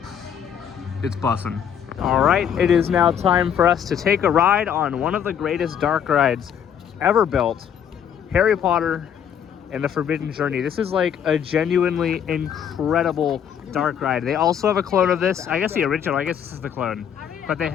It's bussin'. All right, it is now time for us to take a ride on one of the greatest dark rides ever built, Harry Potter and the Forbidden Journey. This is like a genuinely incredible dark ride. They also have a clone of this. I guess the original, I guess this is the clone. But they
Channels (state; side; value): quieter; right; 8.5 dB